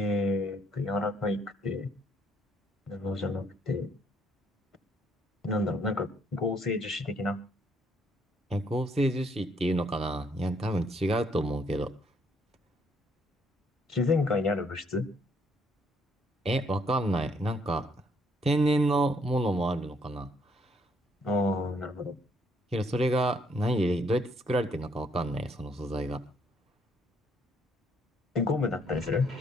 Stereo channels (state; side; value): normal; both; correlation 0.69